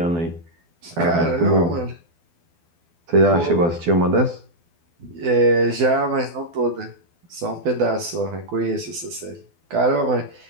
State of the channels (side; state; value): left; late; 12 ms